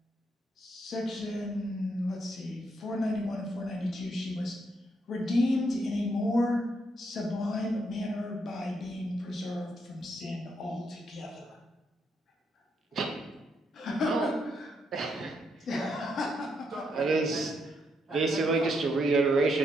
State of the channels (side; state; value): both; normal; correlation 0.77